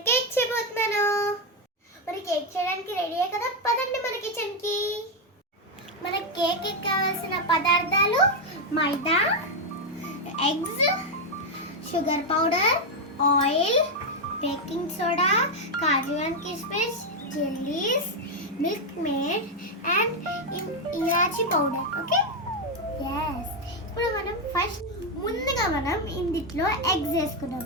కేక్ చేయబోతున్నాను. మరి కేక్ చేయడానికి రెడీయే కదా, పదండి మన కిచెన్కి. మన కేక్ కావాల్సిన పదార్థాలు maida, eggs, sugar powder, oil, baking soda, kaju and కిస్మిస్, jellies, Milkmaid and elaichi powder. Okay, yes. ఇప్పుడు మనం ముందుగా మనం ఇందులో ఎగ్స్ వేసుకున్నాం.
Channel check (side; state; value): both; normal; correlation 0.03